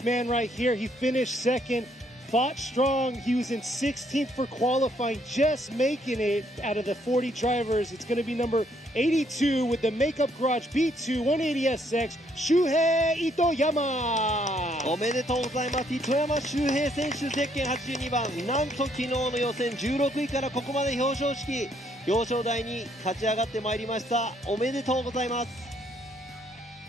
man right here, he finished second, fought strong. He was in 16th for qualifying, just making it out of the 40 drivers. It's going to be number 82 with the Makeup Garage B2 180SX, Shuhei Itoyama. おめでとうございます。糸山周平選手ゼッケン82番、なんと昨日の予選16位からここまで表彰台に勝ち上がってまいりました。おめでとうございます。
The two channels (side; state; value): both; normal; correlation 0.69